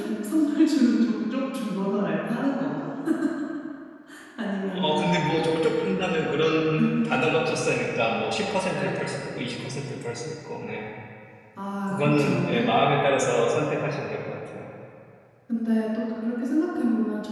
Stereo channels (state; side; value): identical; both; correlation 1.00